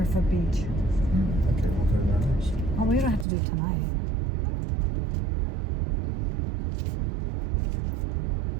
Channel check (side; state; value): left; drops out; at 3.2 s